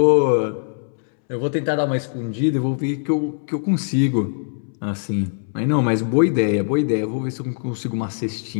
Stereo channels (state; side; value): silent; right; 65 dB below the other